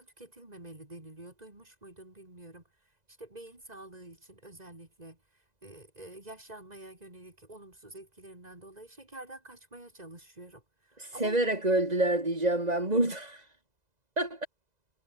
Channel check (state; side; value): late; left; 2.0 ms